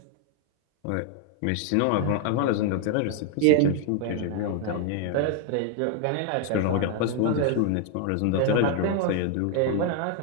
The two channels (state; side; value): different; both; correlation 0.00